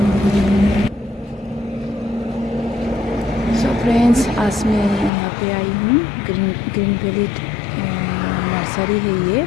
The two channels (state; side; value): drops out; right; at 5.1 s